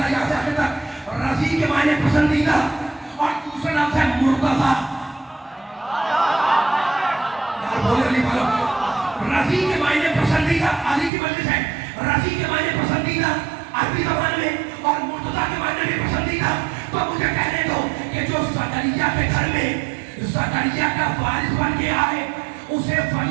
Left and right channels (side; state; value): left; drops out; at 11.1 s